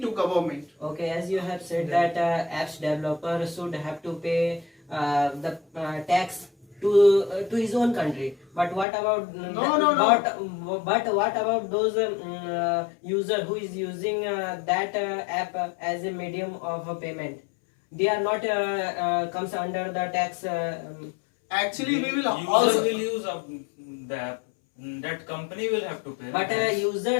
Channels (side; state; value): right; drops out; at 8.8 s